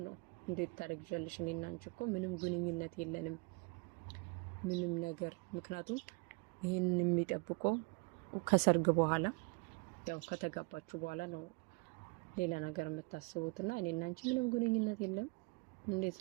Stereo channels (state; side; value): quieter; left; 30.0 dB